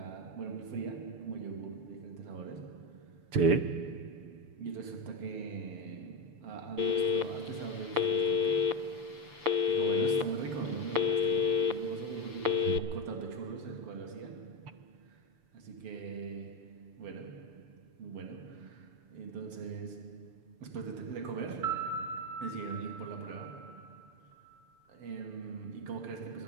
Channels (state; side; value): late; left; 6.9 ms